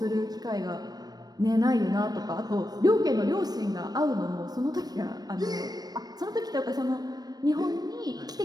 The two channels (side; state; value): left; late; 0.19 ms